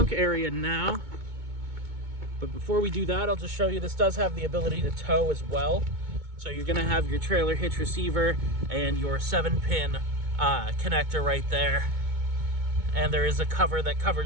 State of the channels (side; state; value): left; late; 2.2 ms